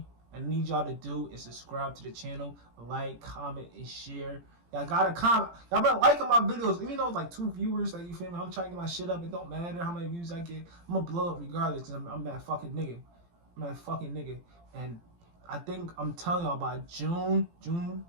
I need y'all to do is subscribe to the channel, like, comment, and share. Y'all gotta comment. Y'all been liking my videos, even though it's like 2 viewers. Like, you feel me? I'm trying to get my shit up. It don't matter how many views I get. I'm gonna blow up regardless, because I'm that fucking nigga. I'm that fucking nigga. And I think I'm telling y'all by June,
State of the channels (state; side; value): late; left; 17 ms